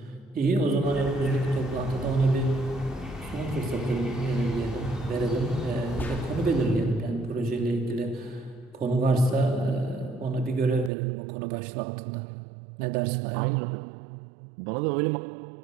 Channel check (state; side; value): drops out; left; at 10.9 s